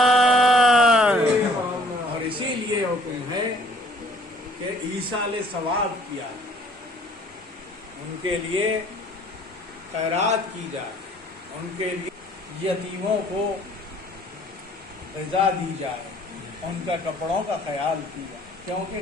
اور اسی لیے حکم ہے کہ ایصال ثواب کیا جائے، ان کے لیے خیرات کی جائے، ان کے لیے یتیموں کو غذا دی جائے، ان کا کپڑوں کا خیال کیا جائے، کیونکہ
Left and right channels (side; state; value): both; normal; correlation 0.57